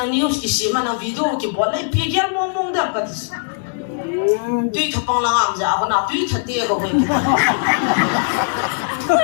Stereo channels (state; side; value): silent; right; 66 dB below the other